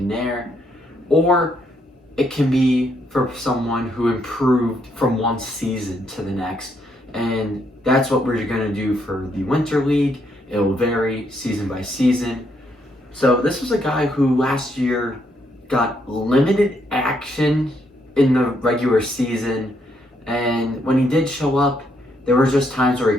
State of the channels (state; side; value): normal; both; correlation 0.74